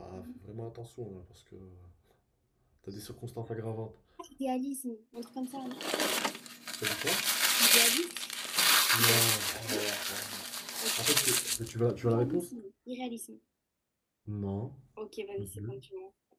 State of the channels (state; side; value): identical; both; correlation 1.00